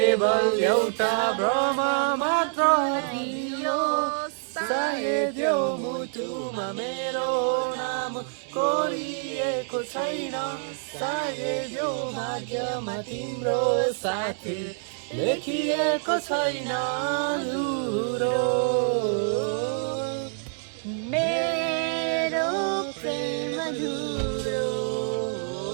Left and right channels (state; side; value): silent; left; digital silence